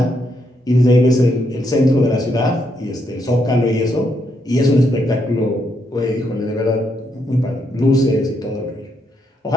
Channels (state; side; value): normal; both; correlation 0.77